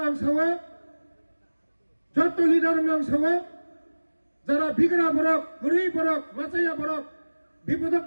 आं सावो जत्तो लिडार नाम सावो जरा बिगड़ा बरक गुरी बरक माचाया बरक विपदक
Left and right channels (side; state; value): both; inverted; correlation -1.00